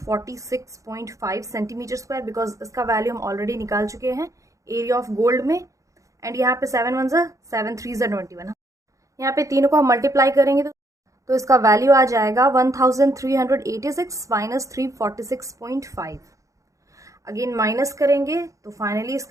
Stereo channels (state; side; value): late; left; 0.16 ms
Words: centimetre square, because इसका वैल्यू हम ऑलरेडी निकाल चुके हैं एरिया ऑफ गोल्ड में। एंड यहाँ पे 7 1 7 3 21, यहाँ पे तीनों को हम मल्टीप्लाई करेंगे तो इसका वैल्यू आ जाएगा 1386 माइनस 346.5। अगेन माइनस करेंगे तो फाइनली